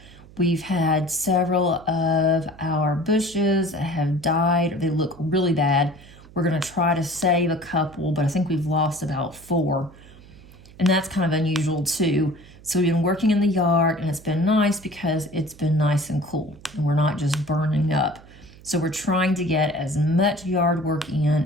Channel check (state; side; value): noise; right; hum, 22 dB below the sound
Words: We've had several of our bushes that have died. They look really bad. We're going to try to save a couple, but I think we've lost about 4. And that's kind of unusual too. So we've been working in the yard, and it's been nice because it's been nice and cool, and we're not just burning up. So we're trying to get as much yard work in